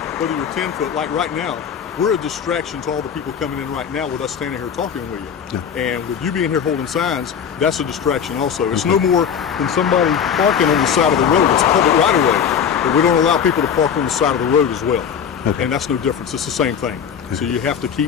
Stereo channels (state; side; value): quieter; right; 7.6 dB